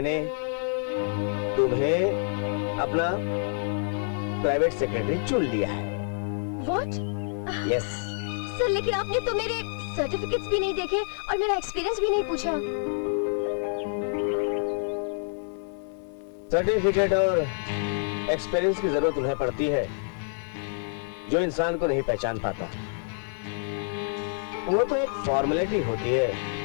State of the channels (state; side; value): silent; right; digital silence